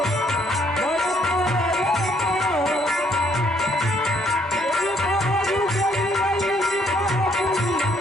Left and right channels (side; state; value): both; normal; correlation 0.67